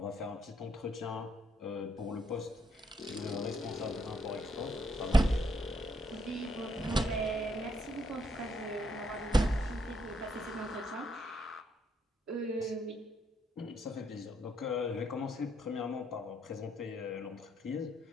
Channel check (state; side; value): normal; both; correlation 0.74